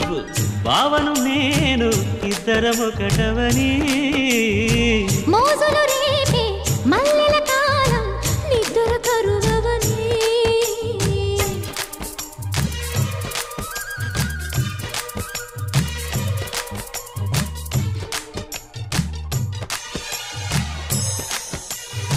భావను నేను, ఇద్దరమొకటవని మోజులు రేపే మల్లె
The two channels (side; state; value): both; identical; correlation 1.00